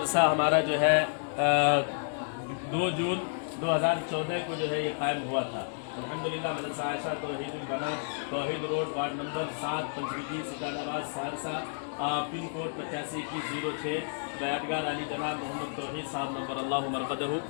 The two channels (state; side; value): silent; right; digital silence